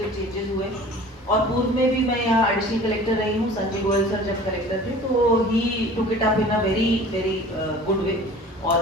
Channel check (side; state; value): both; normal; correlation 0.44